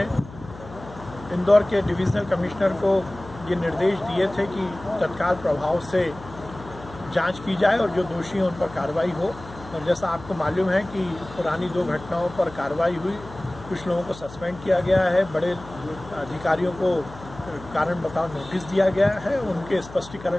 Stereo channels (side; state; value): left; noise; hum, 17 dB below the sound